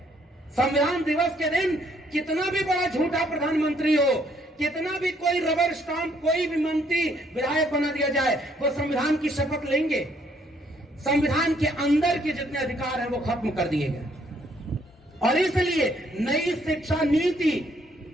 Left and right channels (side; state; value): both; normal; correlation 0.67